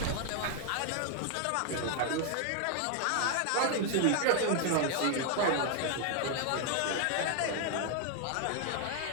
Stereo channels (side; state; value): both; different; correlation 0.00